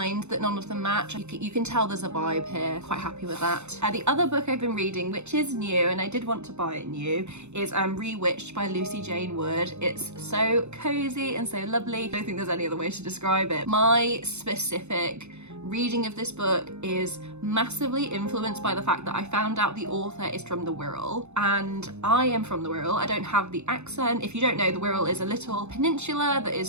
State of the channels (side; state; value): left; late; 0.82 ms